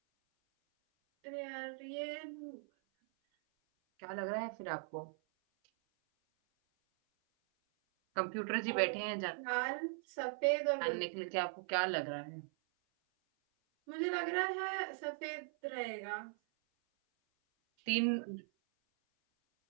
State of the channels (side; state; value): left; silent; 51 dB below the other